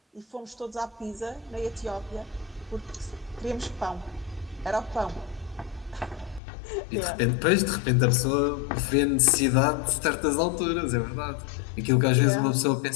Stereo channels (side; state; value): right; drops out; at 6.4 s